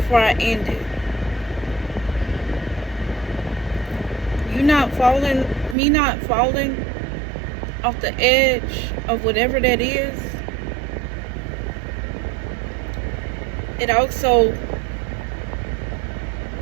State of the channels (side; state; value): left; drops out; at 5.8 s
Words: I end it. You not falling, me not falling off the edge of whatever that is. It also